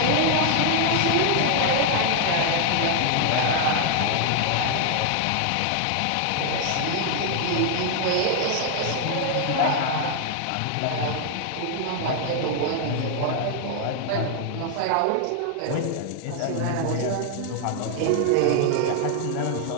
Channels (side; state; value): both; different; correlation 0.00